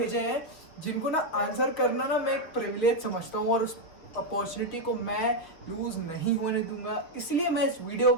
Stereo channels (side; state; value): right; late; 6.3 ms